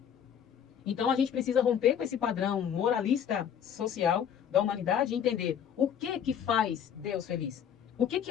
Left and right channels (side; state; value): right; quieter; 8.6 dB